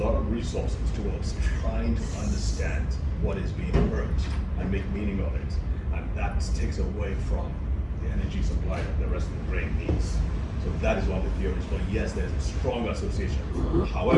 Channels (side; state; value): both; identical; correlation 1.00